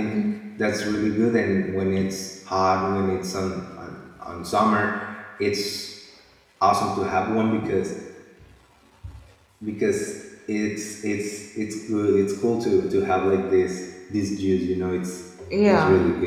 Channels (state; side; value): identical; both; correlation 1.00